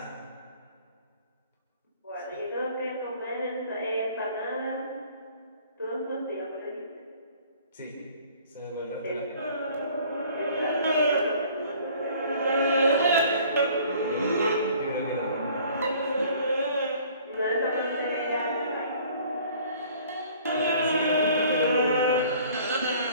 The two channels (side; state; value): both; inverted; correlation -0.53